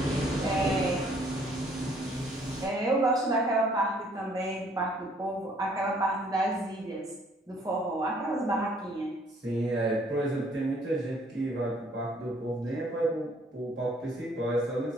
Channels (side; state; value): both; normal; correlation 0.62